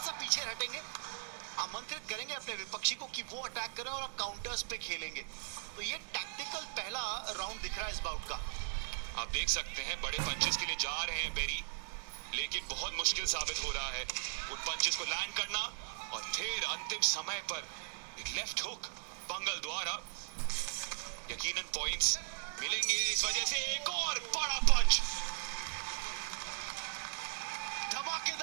पीछे हटेंगे, आमंत्रित करेंगे अपने विपक्षी को कि वो अटैक करें और आप काउंटर्स पे खेलेंगे। तो ये टैक्टिकल पहला राउंड दिख रहा है इस बाउट का। आप देख सकते हैं बड़े पंचेस के लिए जा रहे हैं बेरी, लेकिन बहुत मुश्किल साबित हो रहा है उन पंचेस को लैंड करना। और फिर अंतिम समय पर एक लेफ्ट हुक पंगल द्वारा, यकीनन पॉइंट्स मिलेंगे इस वजह से। एक और बड़ा पंच,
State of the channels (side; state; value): left; silent; digital silence